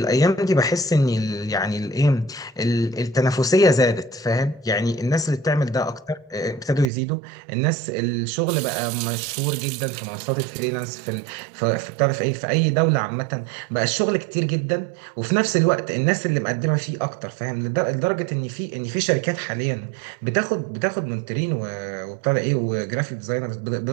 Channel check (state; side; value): drops out; left; at 6.9 s